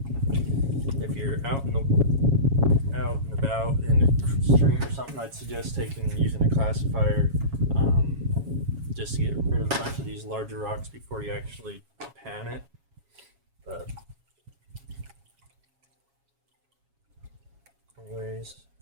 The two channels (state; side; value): late; left; 7.3 ms